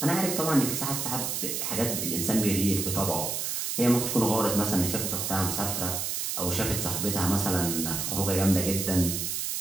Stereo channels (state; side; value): noise; right; hiss, 2 dB below the sound